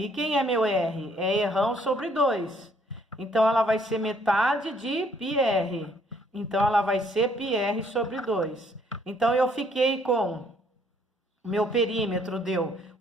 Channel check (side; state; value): both; normal; correlation 0.65